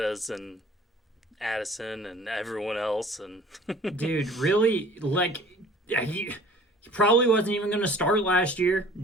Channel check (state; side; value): normal; both; correlation 0.49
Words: and Addison and everyone else. And Dude, really, he probably wasn't even going to start last year.